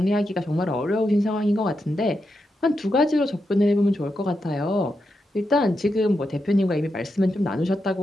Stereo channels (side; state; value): both; normal; correlation 0.86